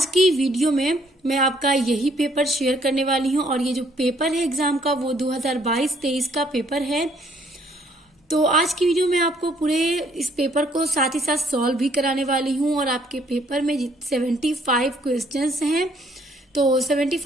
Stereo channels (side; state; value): both; normal; correlation 0.65